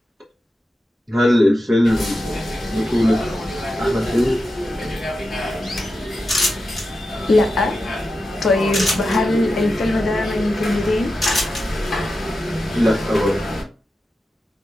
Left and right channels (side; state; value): both; normal; correlation 0.90